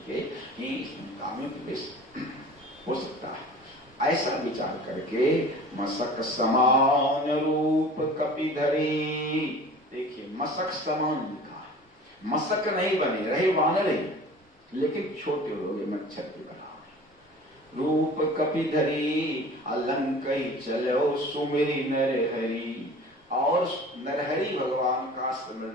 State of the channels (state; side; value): normal; both; correlation 0.42